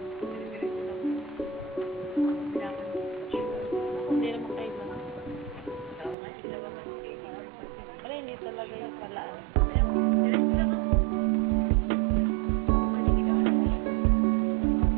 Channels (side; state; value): left; drops out; at 6.2 s